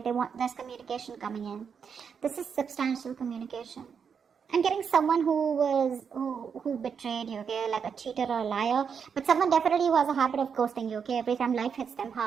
There's communication coming in. This is substantial communication. I'm getting someone who betrayed you, okay, like a cheater or a liar, but someone definitely who has a habit of ghosting you, okay, every time life hits them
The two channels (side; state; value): left; quieter; 6.7 dB